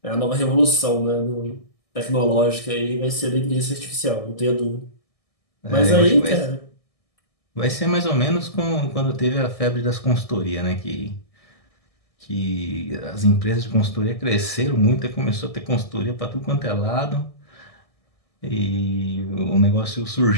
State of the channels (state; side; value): late; right; 1.6 ms